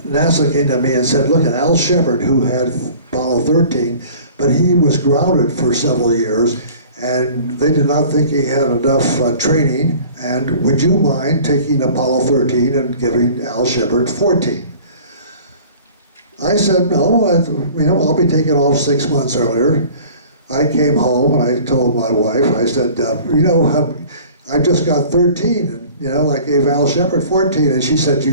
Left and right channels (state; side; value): inverted; both; correlation -0.47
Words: came to me and said, look, Al Shepard, who had Apollo 13, but he was grounded for several years, and they did not think he had enough training, and would you mind taking Apollo 13 and giving Al Shepard 14? I said, no, I'll be taking off 6 months earlier. I came home and I told my wife, I said, I just got 13, and I gave Al Shepard 14, and she said,